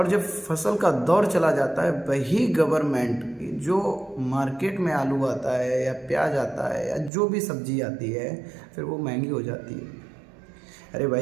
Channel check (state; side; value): drops out; left; at 7.1 s